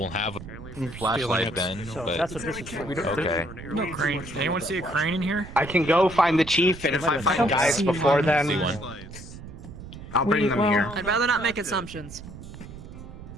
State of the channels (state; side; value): noise; right; rumble, 14 dB below the sound